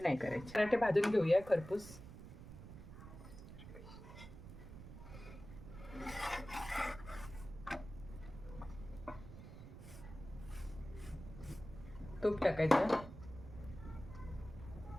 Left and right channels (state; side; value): noise; right; rumble, 13 dB below the sound